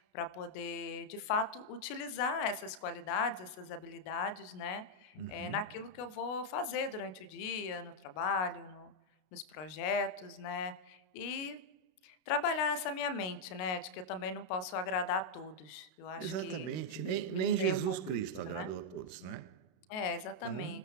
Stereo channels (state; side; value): late; right; 33 ms